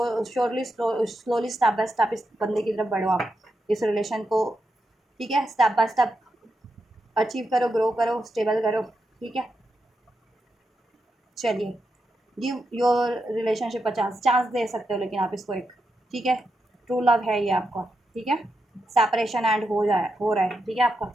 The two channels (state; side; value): normal; both; correlation 0.85